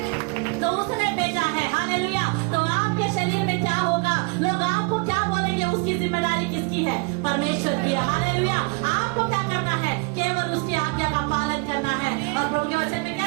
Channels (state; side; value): quieter; left; 29.6 dB